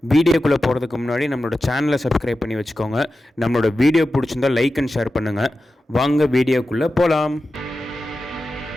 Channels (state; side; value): normal; both; correlation 0.92